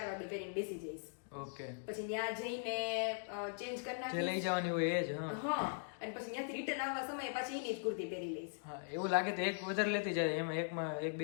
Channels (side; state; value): right; silent; digital silence